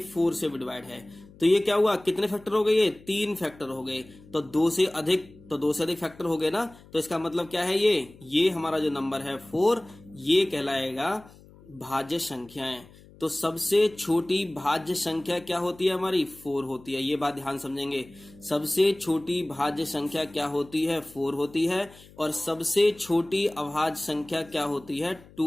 4 से भी डिवाइड है, तो ये क्या हुआ? कितने फैक्टर हो गए? ये 3 फैक्टर हो गए। तो 2 से अधिक, तो 2 से अधिक फैक्टर हो गए ना, तो इसका मतलब क्या है? ये हमारा जो नंबर है 4, ये कहलाएगा भाज्य संख्याएं। तो सबसे छोटी भाज्य संख्या क्या होती है? हमारी 4 होती है। ये बात ध्यान समझेंगे, सबसे छोटी भाज्य संख्या क्या होती है? 4 होती है। और सबसे छोटी अभाज्य संख्या क्या होती है? 2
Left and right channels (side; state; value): left; noise; hum, 23 dB below the sound